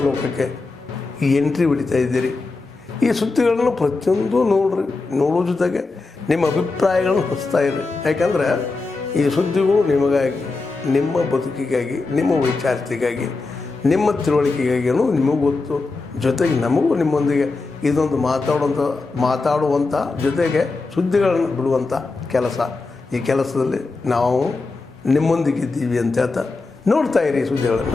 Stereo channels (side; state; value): right; quieter; 3.7 dB